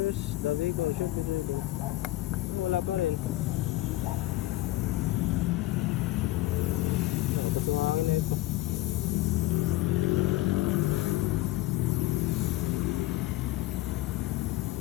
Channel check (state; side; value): quieter; right; 17.6 dB